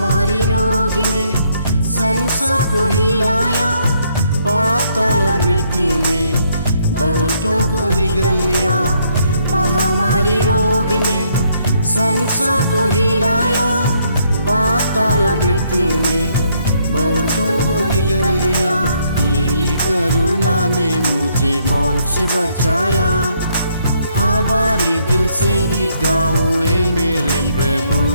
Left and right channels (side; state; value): both; inverted; correlation -0.71